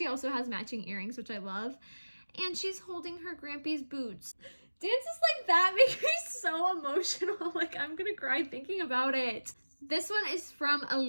also has matching earrings, which I love. And she's holding her Grampy's boots. Dances like that make me so emotional. Like, I'm gonna cry thinking about it. This one is from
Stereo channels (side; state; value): both; inverted; correlation -1.00